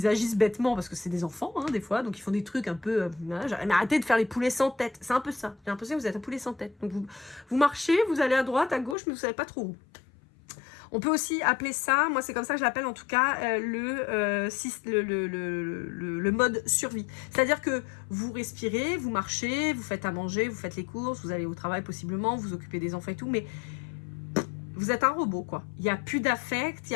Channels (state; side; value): drops out; right; at 9.0 s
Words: agissent bêtement, parce que c'est des enfants, hein, des fois, donc ils font des trucs un peu... mais arrêtez de faire les poulets sans tête. C'est un peu ça. J'ai l'impression que vous êtes un poulet sans tête. Donc, vous marchez, vous allez à droite, à gauche, mais vous savez pas trop où. On peut aussi appeler ça, moi c'est comme ça que je l'appelle en tout cas, le mode survie. C'est-à-dire que vous respirez, vous marchez, vous faites à manger, vous faites les courses, vous allez au travail possiblement, vous occupez des enfants et tout, mais vous êtes un robot quoi. Il n'y a plus d'affect, il n'y